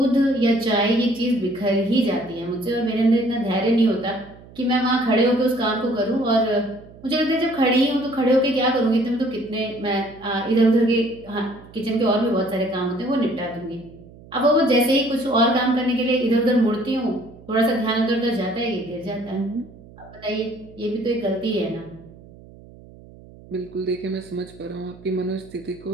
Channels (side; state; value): right; noise; hum, 21 dB below the sound